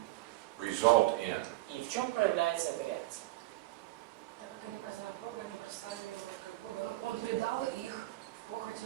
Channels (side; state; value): left; quieter; 18.5 dB